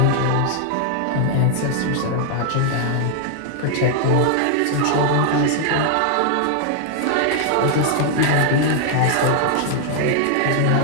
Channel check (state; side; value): different; both; correlation 0.00